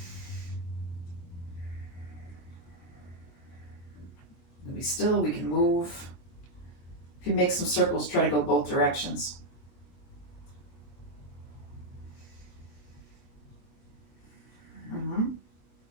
Be still, we can move. If you make some circles, try to go both directions.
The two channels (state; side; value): late; right; 23 ms